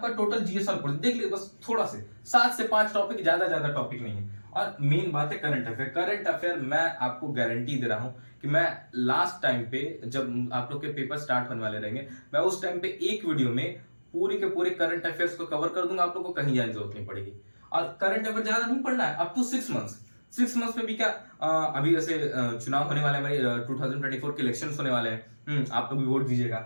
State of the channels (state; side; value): inverted; both; correlation -1.00